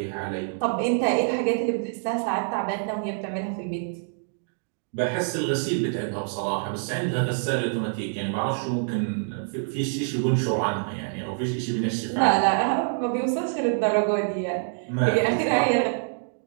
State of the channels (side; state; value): left; silent; digital silence